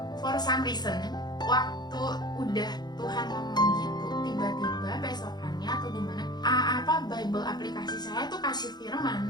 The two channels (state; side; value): late; right; 0.20 ms